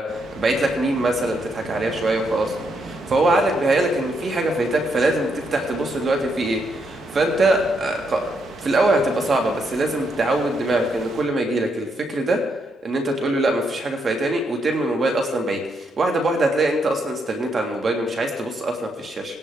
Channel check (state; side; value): normal; both; correlation 0.78